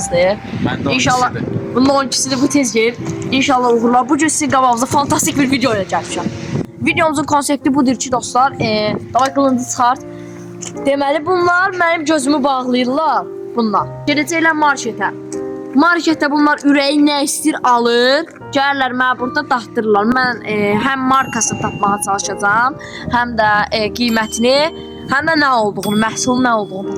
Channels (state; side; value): identical; both; correlation 1.00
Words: Mən də İnşallah 12-sidir. bunun 12-sidir, bu tez gelir. İnşallah uğurlar. Bugün sizin qabağınızda fantastik bir video ilə gəlmişəm. Videomuzun konsepti budur ki, dostlar, davay qılıncı çıxart. Deməli, bunlar mənim gözümü bağlayırlar. Bunlar. Gedəcəklər marketə. Marketdə bunlar ürəyi nə istəyir alır. Gəlirlər mənə burada daxtırırlar. Mən həm markasını tapmağa çalışacağam, həm də qiymətini, həm də nə olduğunu, məhsulun nə olduğunu